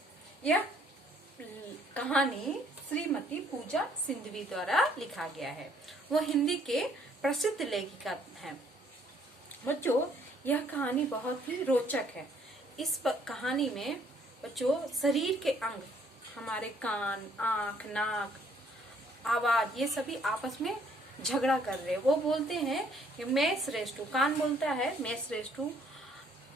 यह कहानी श्रीमती पूजा सिंधवी द्वारा लिखा गया है। वो हिंदी के प्रसिद्ध लेखिका हैं। बच्चों यह कहानी बहुत ही रोचक है। इस कहानी में बच्चों शरीर के अंग, हमारे कान, आंख, नाक, आवाज, ये सभी आपस में झगड़ा कर रहे हैं। वो बोलते हैं कि मैं श्रेष्ठ हूँ। कान बोलता है मैं श्रेष्ठ हूँ,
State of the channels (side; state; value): both; normal; correlation 0.65